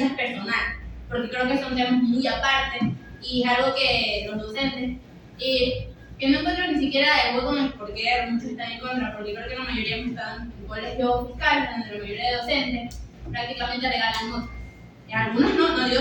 personales, porque creo que son temas muy aparte y es algo que los docentes, que no encuentro ni siquiera el voto en el por qué muchos están en contra, porque creo que la mayoría están en colegios fiscales, donde la mayoría de docentes prácticamente regalan notas. Algunos no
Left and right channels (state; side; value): identical; both; correlation 1.00